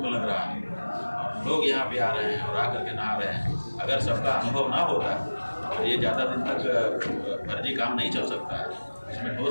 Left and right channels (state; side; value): inverted; both; correlation -1.00